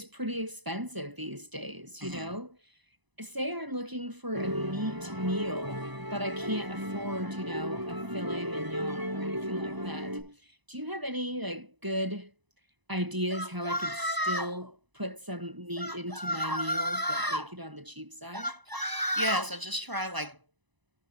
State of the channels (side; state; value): left; late; 1.0 ms